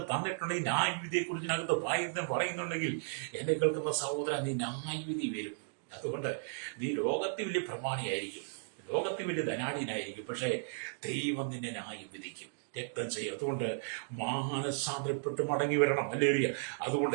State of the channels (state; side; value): silent; left; digital silence